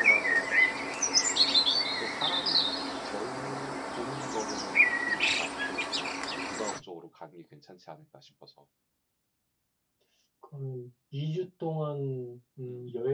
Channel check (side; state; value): both; identical; correlation 1.00